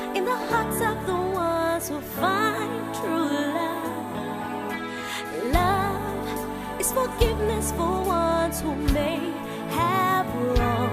in the hearts of the ones who find true love. Love is forgiveness for ones who may have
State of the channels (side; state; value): both; identical; correlation 1.00